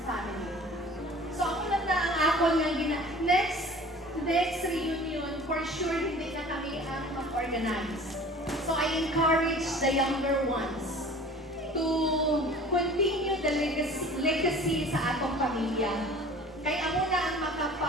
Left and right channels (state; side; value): normal; both; correlation 0.45